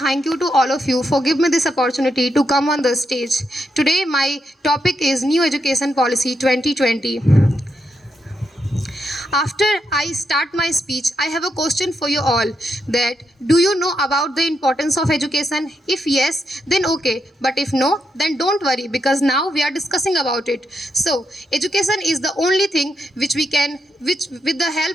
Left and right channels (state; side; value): normal; both; correlation 0.82